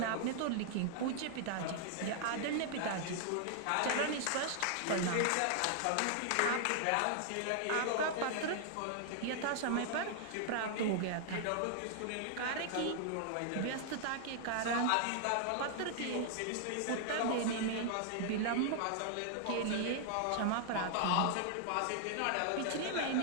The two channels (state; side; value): different; both; correlation -0.01